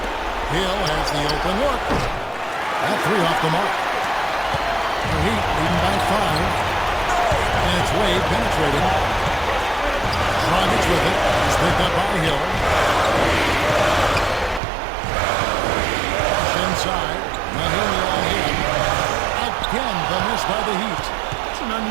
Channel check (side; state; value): left; drops out; at 14.6 s